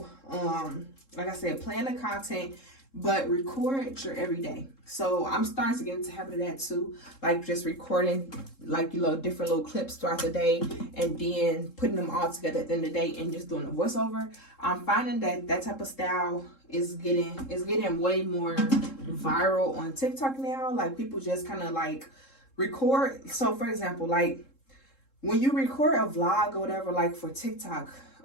like I said, plan the content, but record your everyday. So I'm starting to get into the habit of that too, like just recording like, you know, different little clips throughout the day, and then putting them all together at the end of the day and just doing a voiceover. I'm finding that type of style is getting way more viral on TikTok now. Like people just kind of like record. So for example, like when you record a vlog or whatever, like for TikTok,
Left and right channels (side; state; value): right; late; 3.7 ms